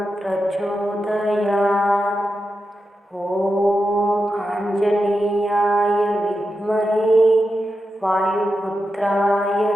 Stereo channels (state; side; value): normal; both; correlation 0.89